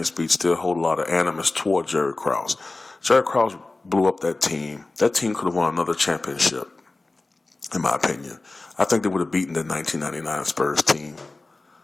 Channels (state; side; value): quieter; right; 3.2 dB